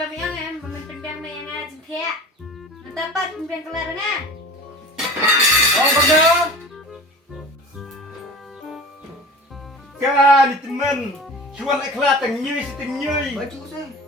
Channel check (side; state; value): both; normal; correlation 0.38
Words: angan memimpin biang yang ngajin kaya. Mentapat pimpinan kelar na. Oh, betul. Kan teman, cuan ikhlas tengyui setengyui. Baju saya.